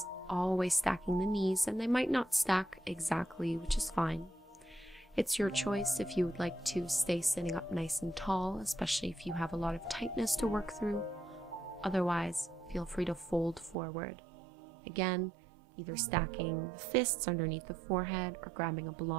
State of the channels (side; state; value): left; drops out; at 13.8 s